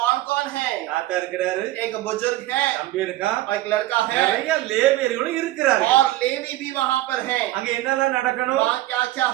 कौन है? தாத்தா இருக்கிறாரு, एक बुजुर्ग है தம்பி இருக்கா, और एक लड़का है நிறைய லேவியர்களும் இருக்கிறார்கள். और लेवी बलि भी वहां पर है। அங்க என்னெல்லாம் நடக்கணும்? वहाँ क्या क्या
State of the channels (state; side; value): quieter; left; 16.1 dB